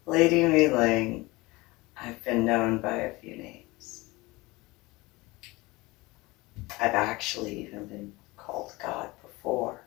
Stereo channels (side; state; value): right; quieter; 22.2 dB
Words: Lady MeeLing. I've been known by a few names. I've actually even been called God before